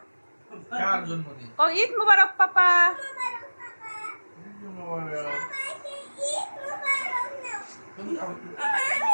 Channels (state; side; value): inverted; both; correlation -1.00